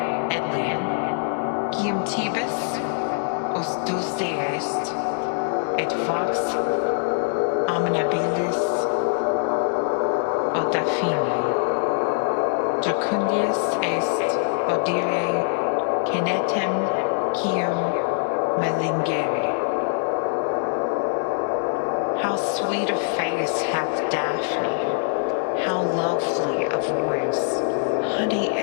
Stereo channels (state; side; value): silent; right; digital silence